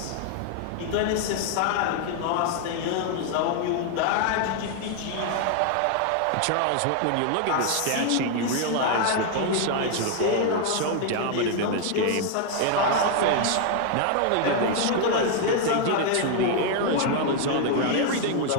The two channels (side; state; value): both; different; correlation 0.00